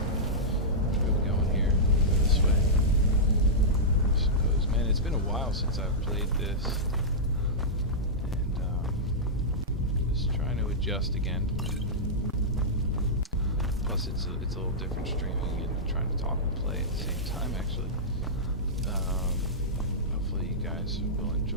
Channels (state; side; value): normal; both; correlation -0.12